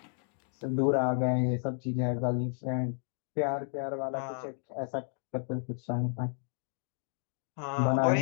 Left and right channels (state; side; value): silent; right; 56 dB below the other